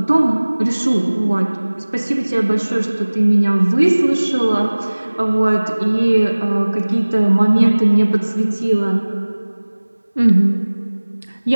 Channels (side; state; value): both; inverted; correlation -1.00